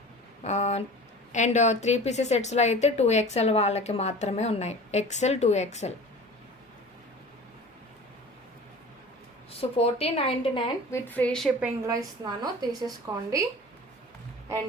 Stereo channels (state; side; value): normal; both; correlation 0.39